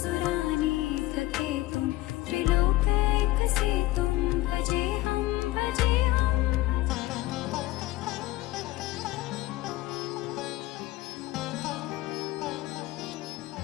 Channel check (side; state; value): right; quieter; 18.0 dB